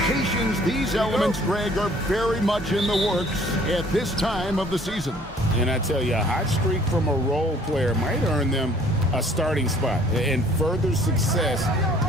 rotations. These elements, Greg, are very much in the works at this time of the season. And I tell you, a hot streak from a role player might earn them a starting spot. And further success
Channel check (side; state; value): both; normal; correlation 0.56